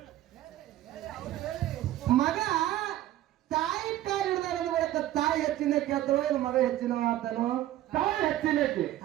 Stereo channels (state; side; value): quieter; left; 14.0 dB